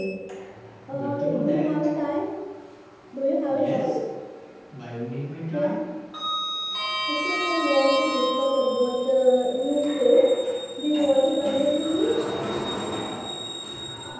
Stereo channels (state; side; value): identical; both; correlation 1.00